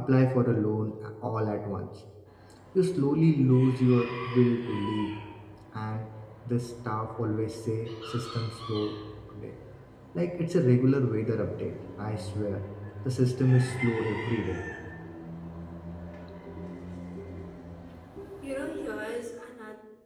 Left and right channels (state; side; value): identical; both; correlation 1.00